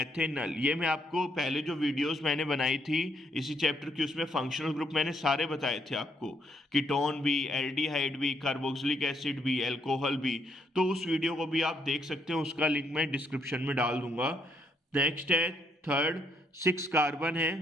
ये मैं आपको पहले जो वीडियोस मैंने बनाई थी इसी चैप्टर की, उसमें फंक्शनल ग्रुप मैंने सारे बताए थे आपको, कीटोन भी, एल्डिहाइड भी, कार्बोक्सिलिक एसिड भी, अल्कोहल भी। तो उस वीडियो को भी आप देख सकते हैं, उसका लिंक मैं डिस्क्रिप्शन में डाल दूंगा। नेक्स्ट है थर्ड, 6 कार्बन है,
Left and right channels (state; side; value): normal; both; correlation 0.73